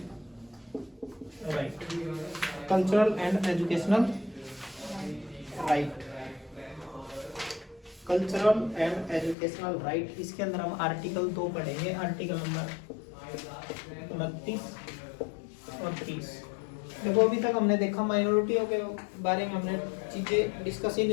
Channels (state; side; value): drops out; right; at 9.3 s